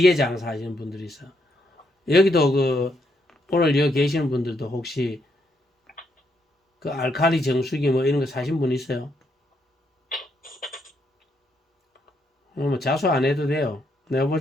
하시는 분들이 있어. 여기도 그 오늘 여기 계시는 분들도 혹시 그 알칼리 정수기 뭐 이런 거 사신 분 있어요? 뭐 자수 안 해도 돼요. 내가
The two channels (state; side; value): normal; both; correlation 0.76